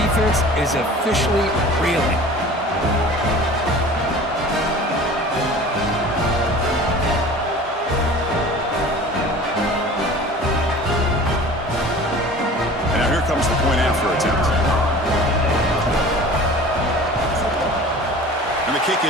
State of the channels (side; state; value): both; normal; correlation 0.42